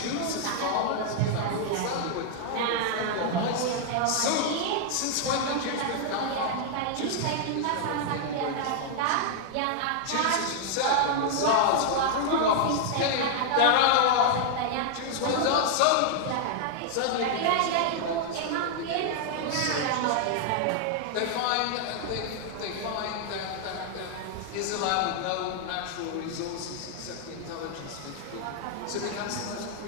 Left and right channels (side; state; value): both; different; correlation 0.00